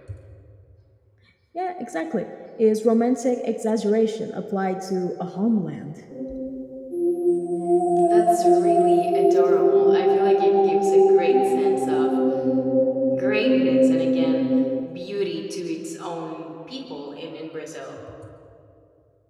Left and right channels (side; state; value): both; identical; correlation 1.00